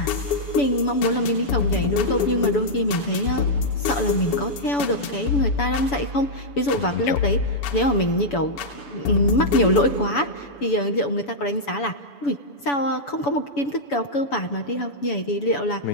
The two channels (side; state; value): right; late; 7.0 ms